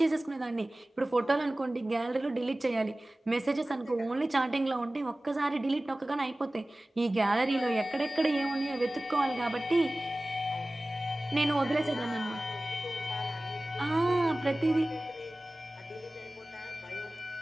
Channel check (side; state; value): both; normal; correlation 0.97